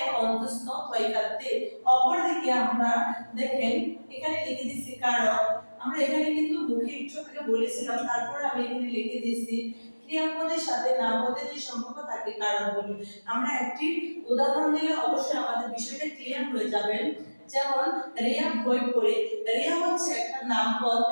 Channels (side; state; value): both; inverted; correlation -1.00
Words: অন্তস্থ তৈকাতে। অপরদিকে আমরা দেখেন এখানে লিখে দিচ্ছি কারক। আমরা এখানে কিন্তু মুখে একটু আগে বলেছিলাম, তারপর আমি এখানে লিখে দিয়েছি ক্রিয়াপদের সাথে নামপদের যে সম্পর্ক তাকে কারক বলি। আমরা একটি উদাহরণ দিলে অবশ্যই আমাদের বিষয়টা ক্লিয়ার হয়ে যাবে। যেমন রিয়া বই পড়ে, রিয়া হচ্ছে একটা নামপদ,